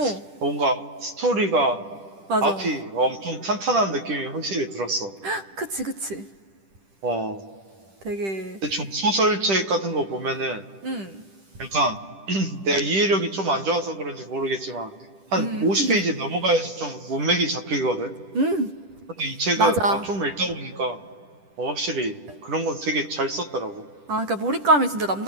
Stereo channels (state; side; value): late; left; 10 ms